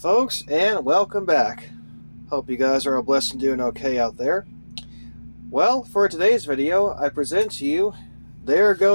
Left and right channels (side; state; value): both; inverted; correlation -1.00